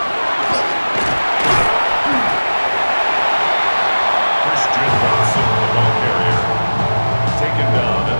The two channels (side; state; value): both; inverted; correlation -1.00